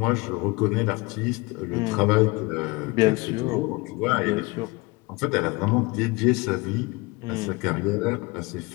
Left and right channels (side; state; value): right; quieter; 24.8 dB